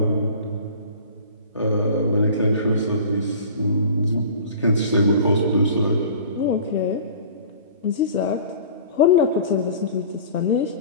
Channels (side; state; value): both; inverted; correlation -0.43